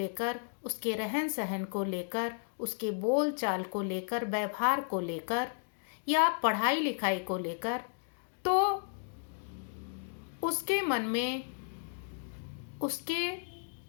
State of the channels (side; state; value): right; silent; digital silence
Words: उसके रहन सहन को लेकर, उसके बोल चाल को लेकर, व्यवहार को लेकर या पढ़ाई लिखाई को लेकर, तो उसके मन में उसके